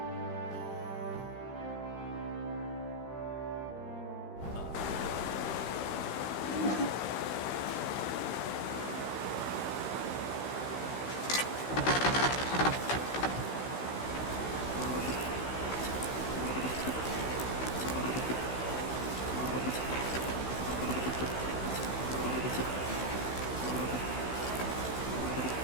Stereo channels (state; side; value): late; right; 16 ms